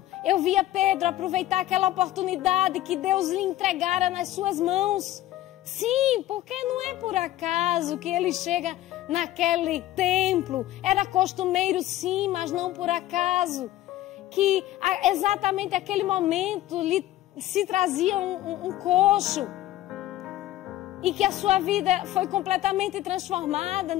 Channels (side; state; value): right; quieter; 14.7 dB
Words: eu via Pedro aproveitar aquela oportunidade que Deus lhe entregara nas suas mãos. Sim, porque não é por acaso que ele chega naquele templo. Era costumeiro sim, mas não por acaso. Que exatamente aquele momento lhe se trazia um coxo. E que a sua vida foi completamente transformada.